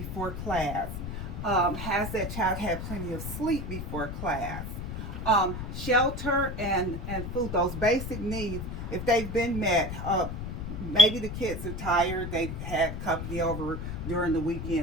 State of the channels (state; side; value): noise; left; rumble, 6 dB below the sound